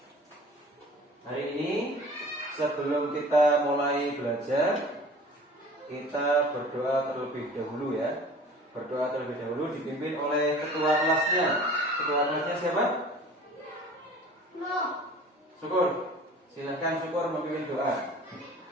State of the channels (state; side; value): normal; both; correlation 0.44